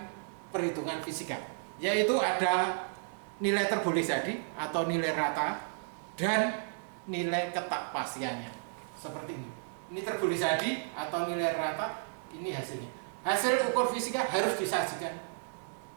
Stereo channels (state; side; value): silent; left; digital silence